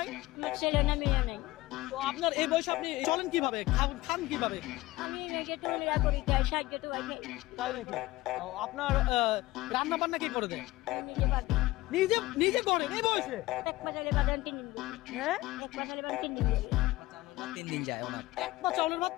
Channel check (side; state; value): right; quieter; 18.4 dB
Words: আমার ছেলে না মেয়ে নাই। তো আপনার এই বয়সে আপনি চলেন কিভাবে, খান কিভাবে? আমি মেয়েকে টুলিরা করি, তাই সাহায্য তো ভাই খাই। তাই নাকি? আপনার রান্না বান্না কি করে দেন? আমি নিজে পারি। নিজে নিজে করেন এই বয়সে? এক পাশালে বাদান 3 দিন দিই। হ্যাঁ, এক পাশালে বাদান 3 দিন দিই। 3 দিন যায় ওনার। এক পা চাউলের ভাত